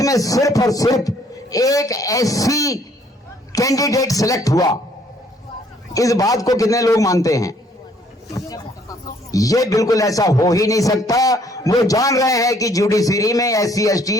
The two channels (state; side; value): normal; both; correlation 0.63